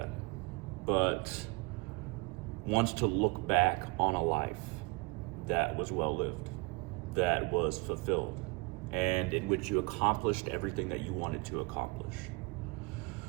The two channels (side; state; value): left; quieter; 26.3 dB